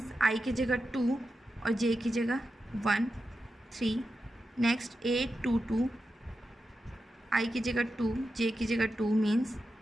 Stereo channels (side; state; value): both; normal; correlation 0.90